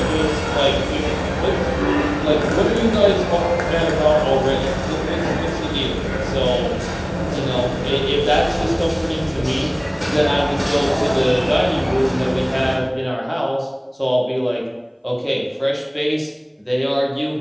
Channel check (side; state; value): both; identical; correlation 1.00